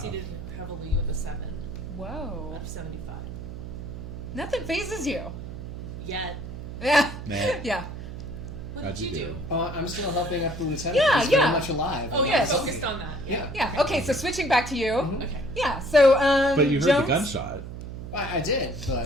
heavily with a 7 Whoa. out of 75. Nothing phases you. Yet. Yeah. Nah. Yeah. What How'd did you you do? do? I'm still helping out the lieutenant. Yeah, He's yeah. very much alive. Oh and yeah, not a focused zombie. on that. Yeah. Yeah. Okay, so switching back to you. Okay. Yeah. So But you heard Jones, the gunshot. I did,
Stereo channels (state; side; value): noise; right; hum, 9 dB below the sound